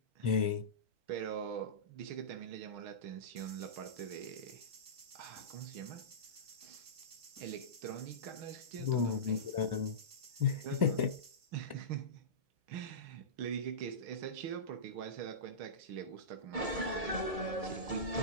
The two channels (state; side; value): late; left; 4.6 ms